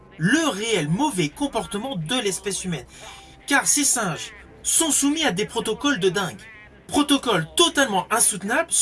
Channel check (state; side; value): identical; both; correlation 1.00